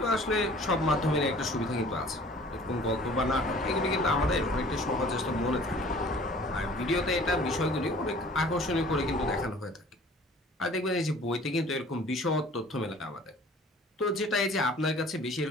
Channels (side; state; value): both; normal; correlation 0.50